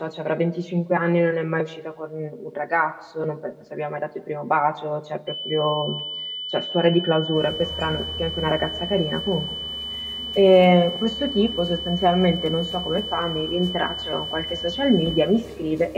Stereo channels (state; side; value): identical; both; correlation 1.00